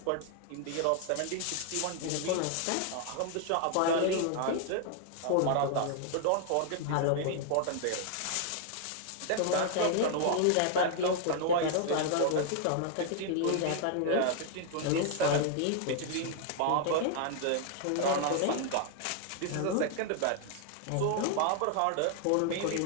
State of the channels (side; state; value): both; different; correlation 0.00